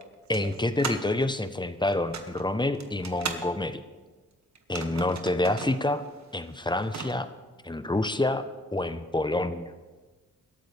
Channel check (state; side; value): normal; both; correlation 0.62